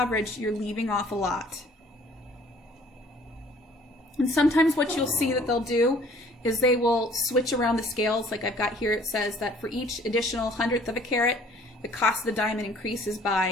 you're leaving off a lot. And sometimes what you'll see that they'll do is they will switch around the scales. Like I've got here, it says that for each additional hundredth of a carat, the cost of the diamond increases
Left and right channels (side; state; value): both; normal; correlation 0.55